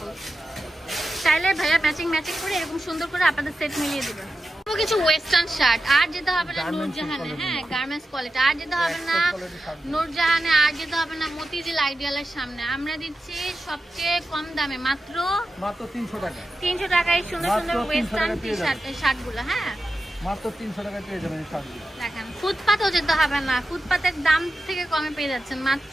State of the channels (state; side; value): normal; both; correlation 0.91